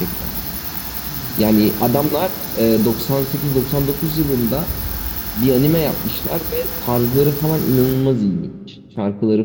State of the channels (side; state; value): both; identical; correlation 1.00